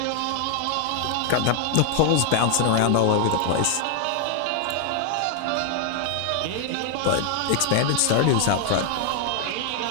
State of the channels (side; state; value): both; different; correlation 0.00